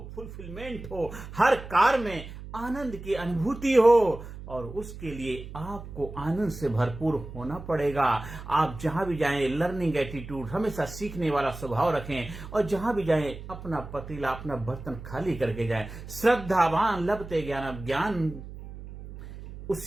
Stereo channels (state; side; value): noise; right; hum, 12 dB below the sound